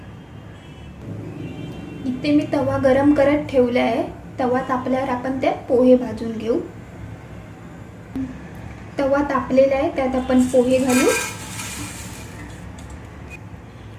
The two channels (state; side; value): identical; both; correlation 1.00